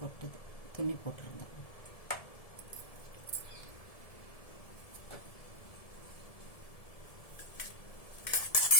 கொட்டுது, துணி போட்டுருந்தேன்.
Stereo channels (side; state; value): right; late; 1.7 ms